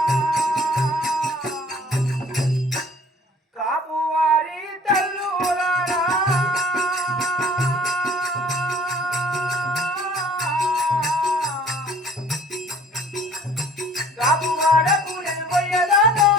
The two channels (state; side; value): normal; both; correlation 0.53